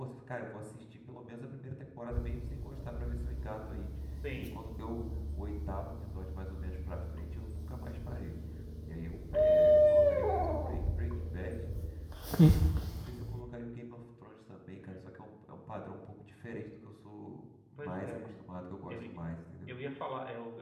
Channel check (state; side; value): identical; both; correlation 1.00